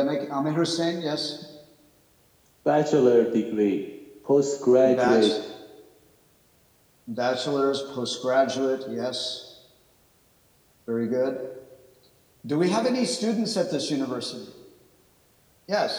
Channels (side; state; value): both; identical; correlation 1.00